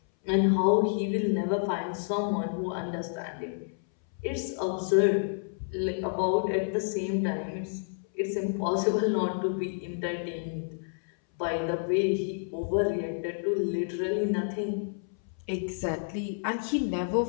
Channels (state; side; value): silent; right; 58 dB below the other